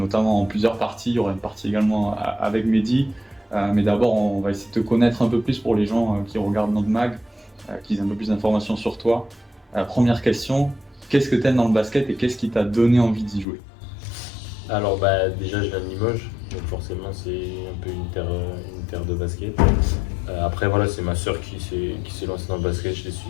en plusieurs parties. Il y aura une partie également avec Mehdi. Mais d'abord on va essayer de te connaître un peu plus pour les gens qui regardent notre mag, qui aient un peu plus d'informations sur toi. Première question, qu'est-ce que tu aimes dans le basket et qu'est-ce qui t'a donné envie d'y jouer? Alors déjà je viens de Limoges, donc forcément c'est un peu une terre de basket. Après voilà, c'est ma sœur qui s'est lancée dans le basket, je l'ai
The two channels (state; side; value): drops out; right; at 13.5 s